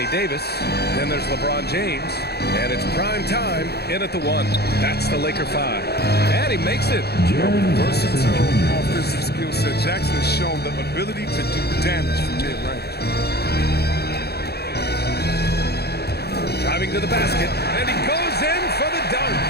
Davis. Then there's LeBron James. And it's prime time in at the 1. That's the Laker 5. And he makes it. Versatile offensive skill set. Jackson has shown the ability to do damage from mid-range. Driving to the basket. And he goes in for the dunk.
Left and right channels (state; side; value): late; right; 0.47 ms